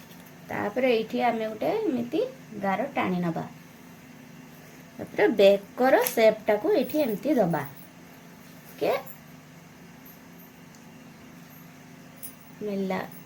तापरे एठी आमे गोटे एमिति गार टाणी नबा। तापरे बेकर शेपटा को एठी एमती दबा के मिला।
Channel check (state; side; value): identical; both; correlation 1.00